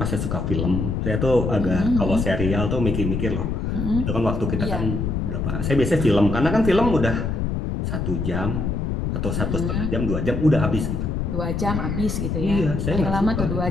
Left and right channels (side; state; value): left; noise; rumble, 1 dB below the sound